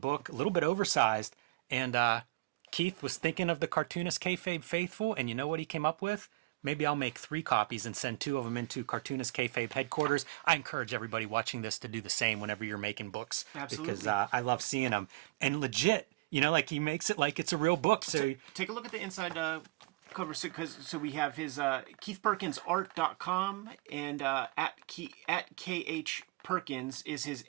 book, a little bit oversized, and Keith was thinking of the Cartoonist Kayfabe faithful, and you know what he came up with? Maybe I'll make 3 copies and send 2 of them into Cartoonist Kayfabe headquarters. I encourage everybody watching this to do the same whenever you're making books. Absolutely. Because I love seeing them. And legit, you know, like he makes it like it's a real book. So take a look at the inside cover. So we have his KeithPerkinsArt.com, and at KH Perkins is his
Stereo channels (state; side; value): quieter; left; 22.9 dB